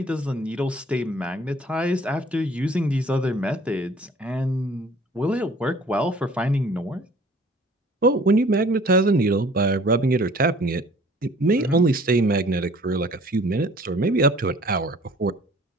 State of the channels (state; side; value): normal; both; correlation 0.52